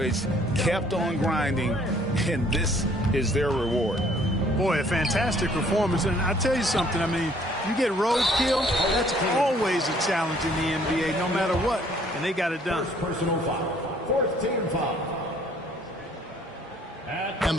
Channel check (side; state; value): both; normal; correlation 0.60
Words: kept on grinding, and this is their reward. Boy, a fantastic performance. And I tell you something, I mean, you get roadkill, that's always a challenge in the NBA, no matter what. And they got it done. Personal foul. 4th team foul. And